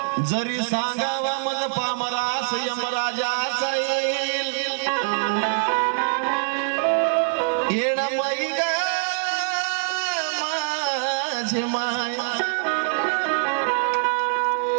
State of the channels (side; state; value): left; silent; 63 dB below the other